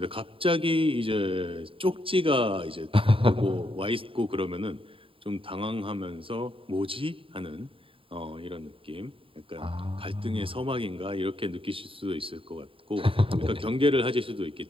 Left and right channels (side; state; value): left; late; 0.26 ms